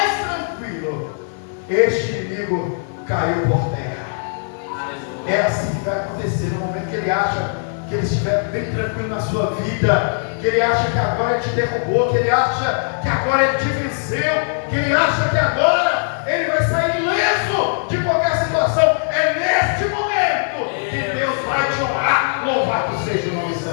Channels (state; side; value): silent; right; digital silence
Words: tranquilo, este inimigo caiu por terra. É assim que vai acontecer no momento que ele acha que ele estiver bem tranquilo na sua vida, que ele acha que agora ele te derrubou, que ele acha que agora ele te venceu, que ele acha que agora ele vai sair ileso de qualquer situação. É neste momento que Deus vai te honrar. Louvado seja o nome